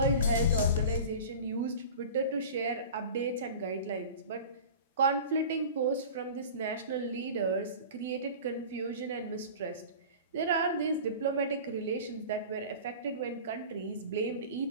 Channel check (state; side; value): inverted; both; correlation -0.37